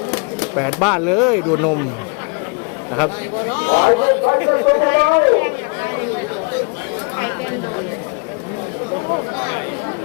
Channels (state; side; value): quieter; right; 34.3 dB